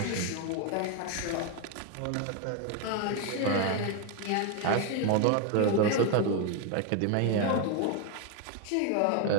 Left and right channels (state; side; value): different; both; correlation 0.01